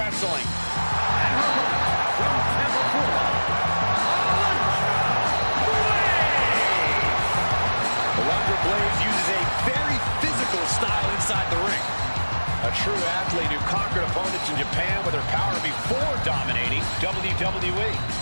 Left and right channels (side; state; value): both; inverted; correlation -1.00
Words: From Tampa, Florida, Alundra Blaze uses a very physical style inside the ring. A true athlete who conquered opponents in Japan with her power before dominating WWE.